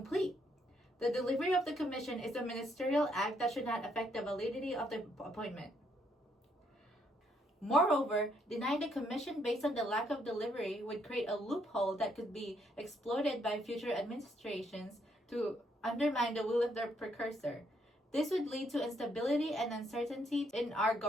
The delivery of the commission is a ministerial act that should not affect the validity of the appointment. Moreover, denying the commission based on the lack of delivery would create a loophole that could be exploited by future administrations to undermine the will of their precursor. This would lead to instability and uncertainty in our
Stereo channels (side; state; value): both; normal; correlation 0.72